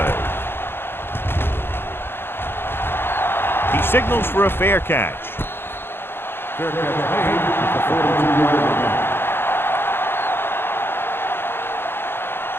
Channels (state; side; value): late; right; 0.11 ms